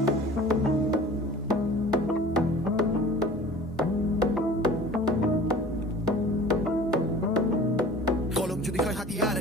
কলম যদি হয় হাতিয়ার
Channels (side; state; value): both; normal; correlation 0.44